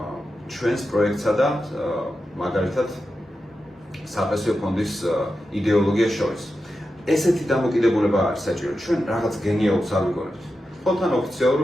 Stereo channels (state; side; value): normal; both; correlation 0.90